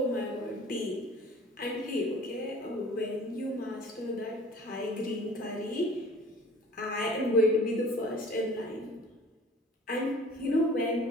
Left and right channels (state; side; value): normal; both; correlation 0.46